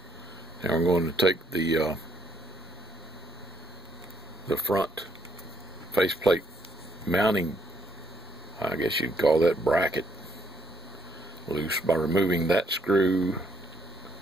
now we're going to take the front faceplate mounting, I guess you'd call that bracket, loose by removing that screw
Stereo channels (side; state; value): both; normal; correlation 0.70